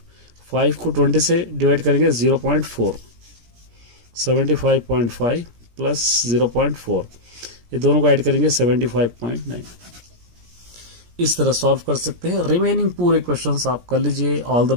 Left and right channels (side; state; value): left; late; 17 ms